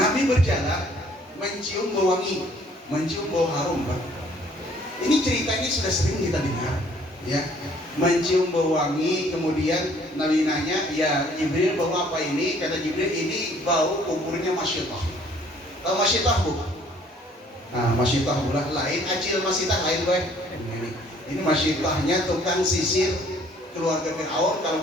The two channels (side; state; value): both; normal; correlation 0.59